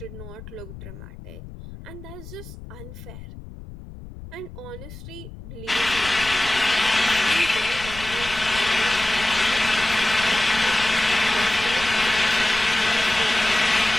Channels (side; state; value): left; noise; rumble, 15 dB below the sound